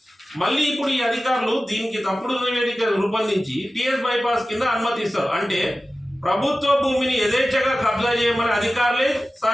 మళ్ళీ ఇప్పుడు ఈ అధికారులు దీనికి తప్పుడు నివేదిక రూపొందించి టిఎస్ బైపాస్ కింద అనుమతిస్తారు. అంటే ప్రభుత్వ భూమిని యథేచ్ఛగా కబ్జా చేయమని అధికారులే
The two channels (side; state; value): both; normal; correlation 0.95